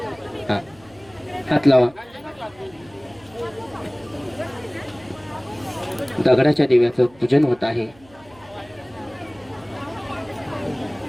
हात लावा. दगडाच्या दिव्याचं पूजन होत आहे.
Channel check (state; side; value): noise; right; hum, 27 dB below the sound